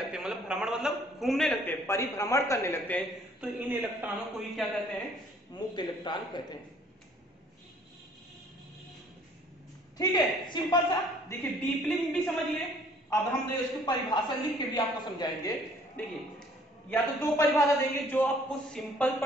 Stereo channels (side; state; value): both; normal; correlation 0.58